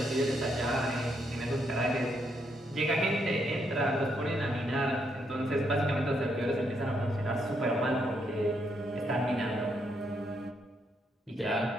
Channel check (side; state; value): both; normal; correlation 0.76